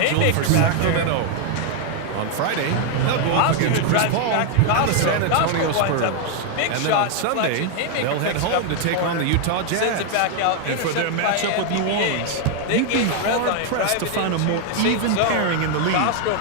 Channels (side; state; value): both; different; correlation 0.00